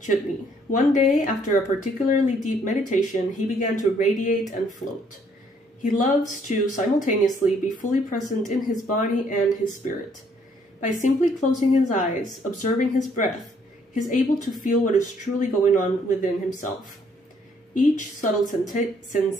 One day, after a particularly deep meditation, he began to radiate and float. He loves to simultaneously be fully present in his body and his spirit. By simply closing his eyes, observing his breath, he is able to feel what is truly going on within himself. Each subtle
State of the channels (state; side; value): normal; both; correlation 0.66